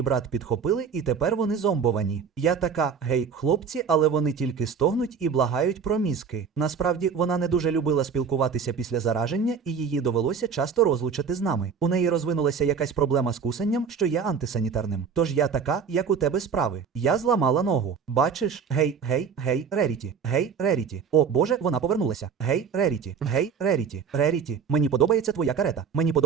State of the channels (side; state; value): left; quieter; 6.4 dB